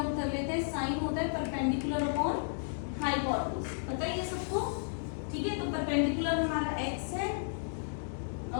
कर लेते हैं। साइन होता है परपेंडिकुलर अपॉन हाइपोटेन्यूज, पता है ये सबको, ठीक है। तो परपेंडिकुलर हमारा x है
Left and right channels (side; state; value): right; silent; digital silence